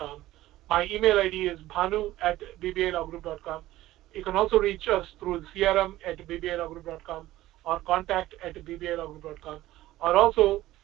My email ID is bhanu@bbilawgroup.com. You can also reach us through crm@bbilawgroup.com or contact@bbilawgroup.com, or also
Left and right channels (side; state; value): left; quieter; 15.8 dB